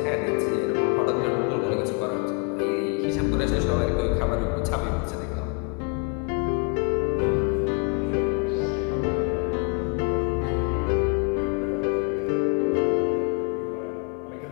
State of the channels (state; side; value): quieter; right; 32.6 dB